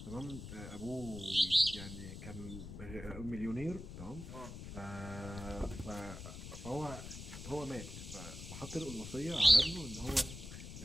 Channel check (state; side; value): noise; left; rumble, 10 dB below the sound